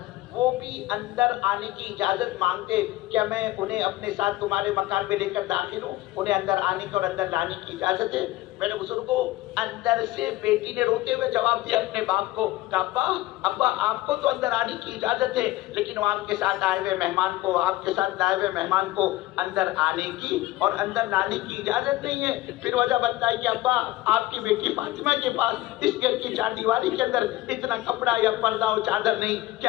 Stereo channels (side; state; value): right; quieter; 17.4 dB